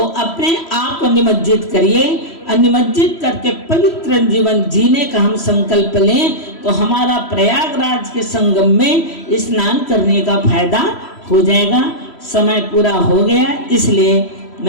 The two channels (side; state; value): right; late; 3.1 ms